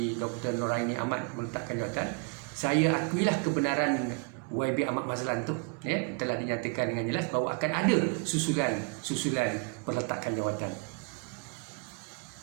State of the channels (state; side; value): quieter; left; 33.9 dB